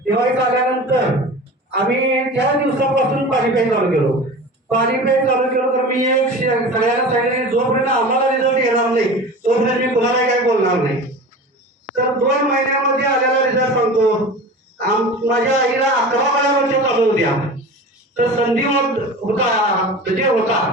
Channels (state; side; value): normal; both; correlation 0.34